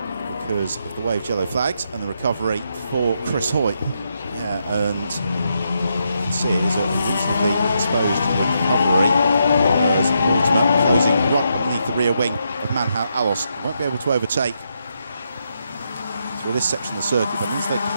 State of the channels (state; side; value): inverted; both; correlation -0.80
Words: because of the waved yellow flags and the recovery for Chris Hoy. Yeah, and you can see it is a reasonably exposed recovery, as Mortimer closing right underneath the rear wing of Manhal Alhalos. Won't be able to overtake through this section of the circuit. That means they